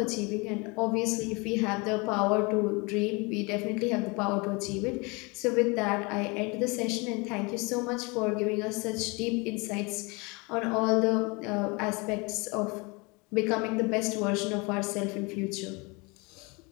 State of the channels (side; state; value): right; quieter; 28.0 dB